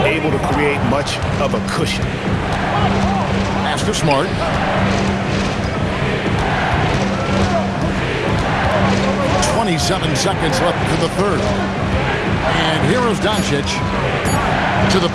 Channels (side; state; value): both; identical; correlation 1.00